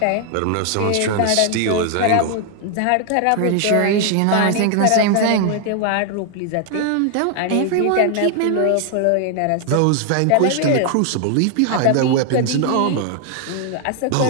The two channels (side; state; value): both; different; correlation 0.00